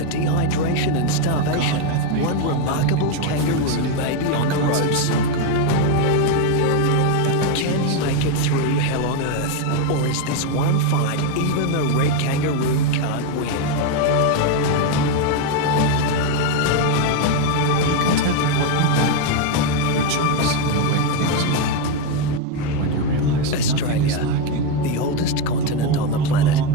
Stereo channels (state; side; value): different; both; correlation 0.02